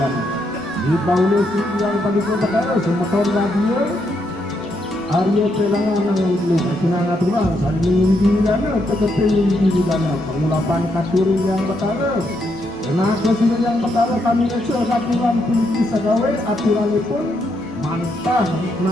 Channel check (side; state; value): both; normal; correlation 0.78